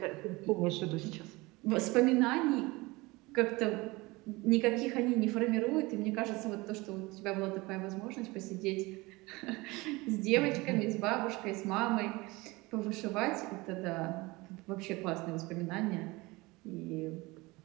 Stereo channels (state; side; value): quieter; left; 22.8 dB